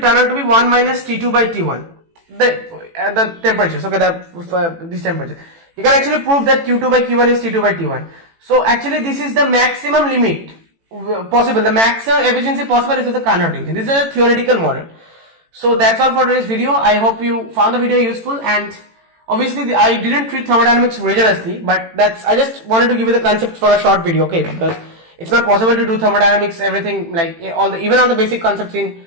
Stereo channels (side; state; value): left; late; 18 ms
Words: turn out to be 1 minus T2 by T1. The temperatures, okay, this temperature. You can actually prove that Q2 by Q1 is T2 by T1. So actually this is the maximum limit possible. The maximum efficiency possible is with the Carnot region. This is a theoretical model. So that's all for today's video. I hope you found the video useful, and obviously I didn't treat thermodynamics rigorously, but I just wanted to give you the concept for a short video, okay? Because it's not possible to do thermodynamics, everything, like even all the basic concepts